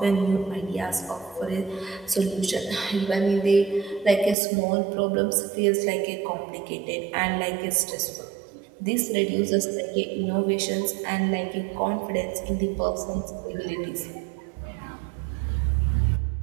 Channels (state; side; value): drops out; left; at 4.4 s